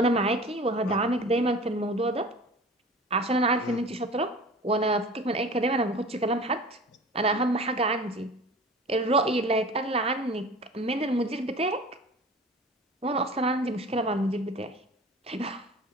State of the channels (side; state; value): both; normal; correlation 0.40